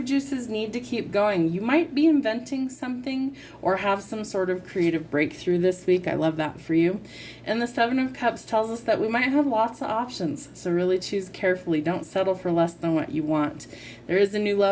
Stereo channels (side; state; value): both; identical; correlation 1.00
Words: juices need to keep going. You might be inventing something or have some sort of creative breakthrough this week. I love that for you. And the Seven of Cups tells us that we might have lots of options. So really choose carefully. Don't settle for less than what you want. There is a new